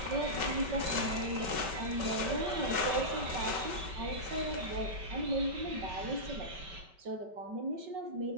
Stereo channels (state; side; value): late; left; 5.2 ms